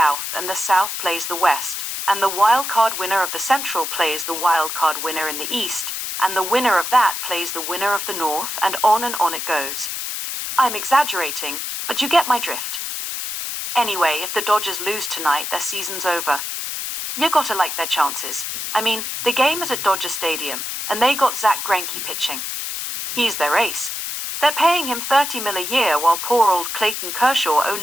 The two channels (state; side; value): noise; left; hiss, 4 dB below the sound